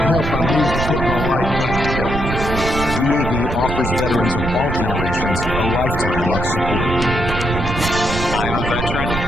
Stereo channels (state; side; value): noise; right; rumble, 4 dB below the sound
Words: I needed to put my life back together. DAV offers veterans of all generations a lifetime of support. I am a veteran.